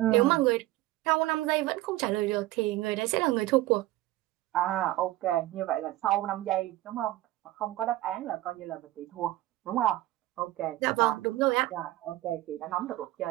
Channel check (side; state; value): left; quieter; 16.8 dB